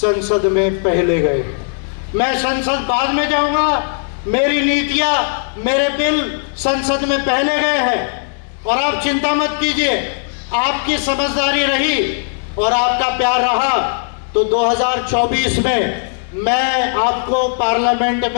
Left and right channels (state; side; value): silent; right; digital silence